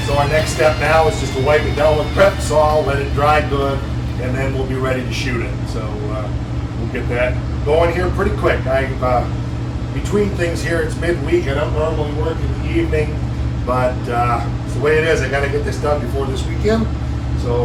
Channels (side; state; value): both; identical; correlation 1.00